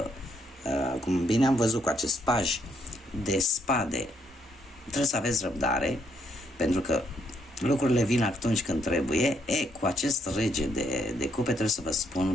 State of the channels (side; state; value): both; normal; correlation 0.72